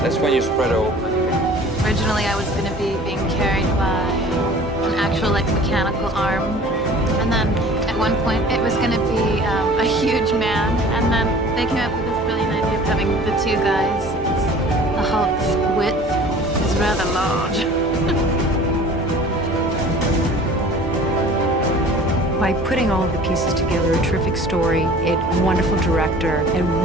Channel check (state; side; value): normal; both; correlation 0.46